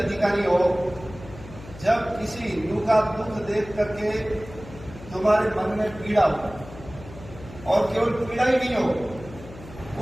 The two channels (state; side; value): noise; left; hum, 16 dB below the sound